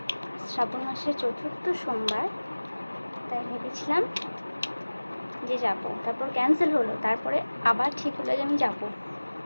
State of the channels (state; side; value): inverted; both; correlation -1.00